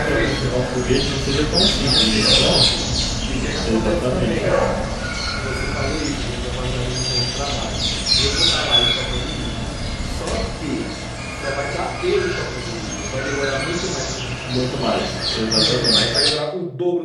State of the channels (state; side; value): identical; both; correlation 1.00